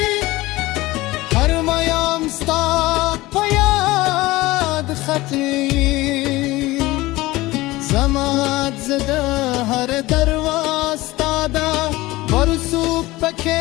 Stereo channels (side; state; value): right; quieter; 19.3 dB